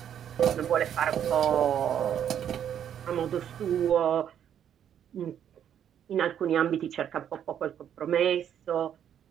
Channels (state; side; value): quieter; left; 9.4 dB